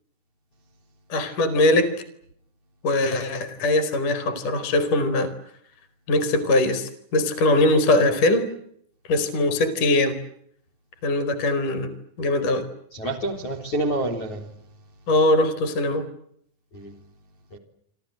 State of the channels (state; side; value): late; right; 10 ms